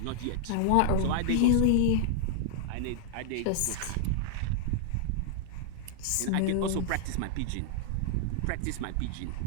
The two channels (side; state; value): both; different; correlation -0.01